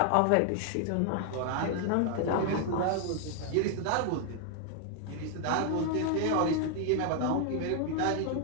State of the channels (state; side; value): different; both; correlation 0.00